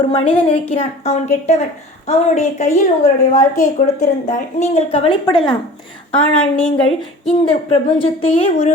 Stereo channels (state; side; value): normal; both; correlation 0.42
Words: மனிதன் இருக்கிறான், அவன் கெட்டவன், அவனுடைய கையில் உங்களுடைய வாழ்க்கையை கொடுத்திருந்தால் நீங்கள் கவலைப்படலாம். ஆனால் நீங்கள் இந்த பிரபஞ்சத்தையே